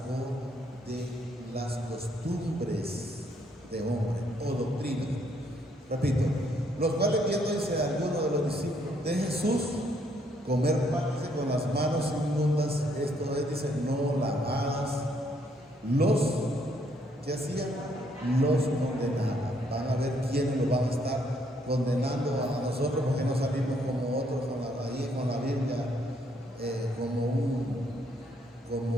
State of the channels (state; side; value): normal; both; correlation 0.70